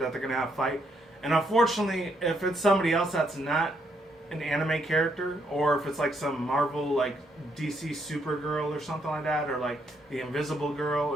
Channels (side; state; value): both; normal; correlation 0.74